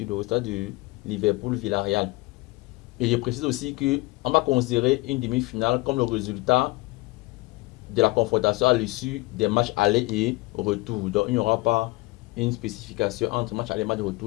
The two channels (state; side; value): quieter; right; 22.1 dB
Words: le résultat de Liverpool-Villarreal. Et je précise aussi qu'on va considérer une demi-finale comme le résultat de la confrontation à l'issue des matchs aller et retour. Donc, il n'y aura pas une spécification entre match aller et match